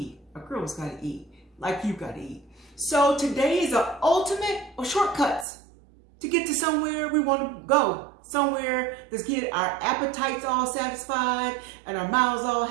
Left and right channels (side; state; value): left; drops out; at 5.5 s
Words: A girl's got to eat, like you've got to eat. So today is the ultimate of shortcuts to get to somewhere we want to go. Somewhere that's get our appetites all satisfied and our mouths all